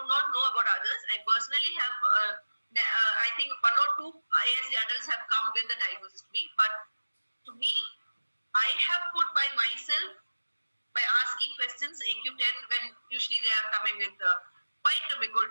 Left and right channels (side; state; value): both; inverted; correlation -1.00